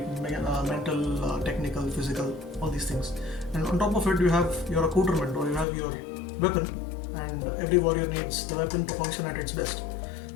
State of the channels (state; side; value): drops out; right; at 5.7 s